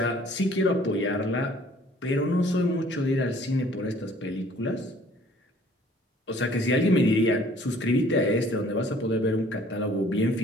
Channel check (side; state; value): both; normal; correlation 0.55